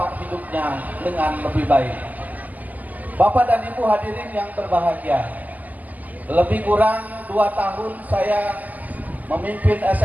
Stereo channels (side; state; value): left; late; 0.080 ms